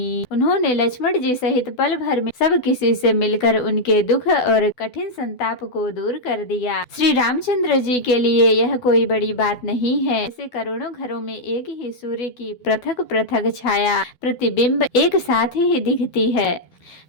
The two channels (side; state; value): right; late; 12 ms